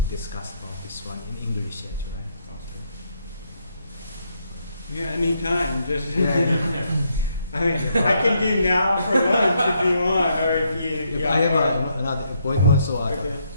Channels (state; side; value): inverted; both; correlation -0.75